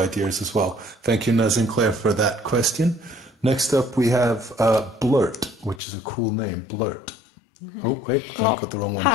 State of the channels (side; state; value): right; drops out; at 5.8 s